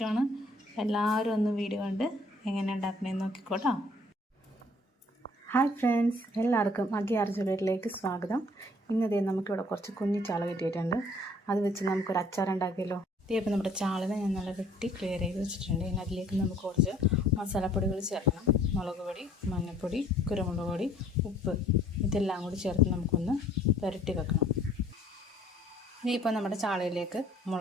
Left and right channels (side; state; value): both; normal; correlation 0.58